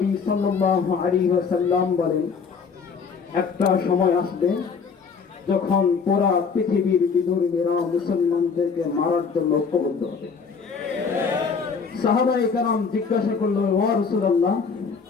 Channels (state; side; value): quieter; right; 5.6 dB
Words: সাল্লাল্লাহু আলাইহি ওয়াসাল্লাম বলেন, একটা সময় আসবে যখন পুরা পৃথিবীর বিধর্মীরা মুসলমানদেরকে মারার জন্য ঐক্যবদ্ধ হবে। সাহাবায়ে কেরাম জিজ্ঞাসা করলো, ওয়া রাসূলুল্লাহ,